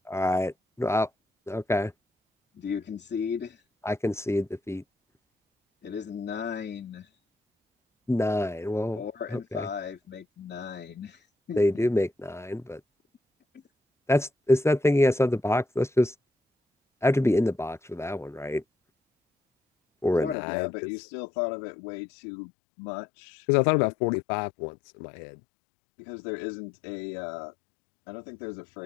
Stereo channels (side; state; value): right; drops out; at 20.4 s